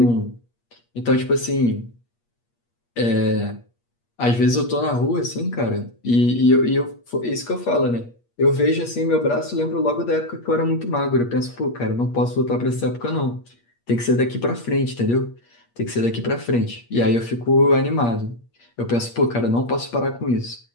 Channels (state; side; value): late; right; 8.5 ms